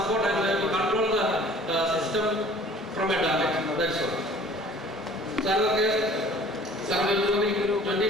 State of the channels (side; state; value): both; normal; correlation 0.50